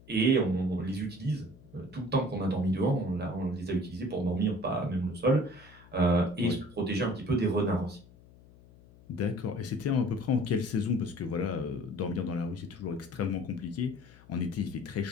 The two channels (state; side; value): noise; left; hum, 23 dB below the sound